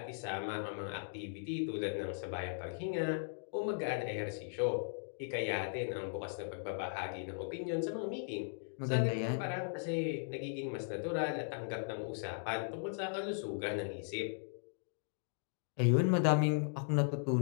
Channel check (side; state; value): right; silent; digital silence